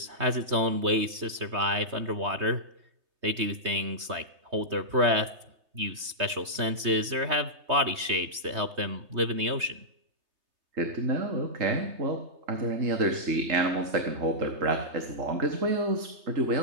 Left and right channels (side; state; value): left; late; 3.2 ms